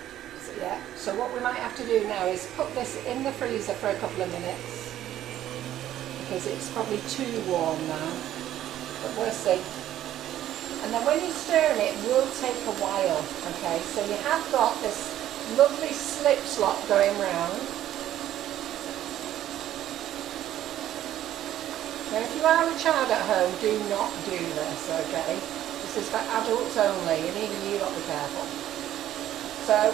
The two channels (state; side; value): quieter; left; 12.4 dB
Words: So, yeah. So what we might have to do now is put this in the freezer for a couple of minutes. Because it's probably too warm now. But we'll see. And then when you stir it will take a while, okay? So you have got this lovely slip slop going round. Now if you are a child at home, do not do this, okay? This is for adults only, and even you got to be careful. So